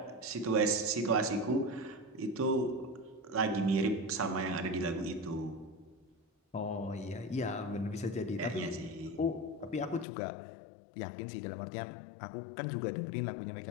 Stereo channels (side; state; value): right; drops out; at 10.1 s